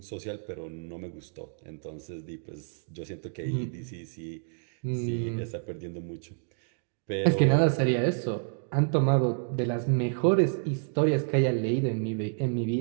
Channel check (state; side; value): silent; left; digital silence